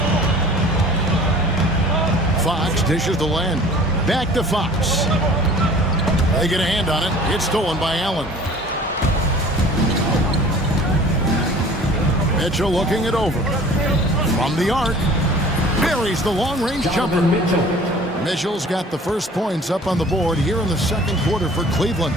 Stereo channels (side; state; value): both; normal; correlation 0.47